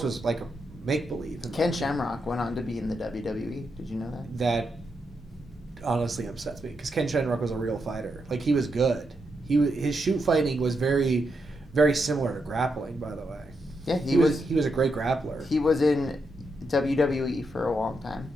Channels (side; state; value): both; normal; correlation 0.83